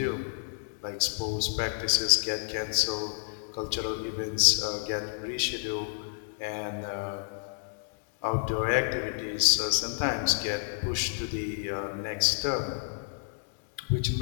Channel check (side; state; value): right; silent; digital silence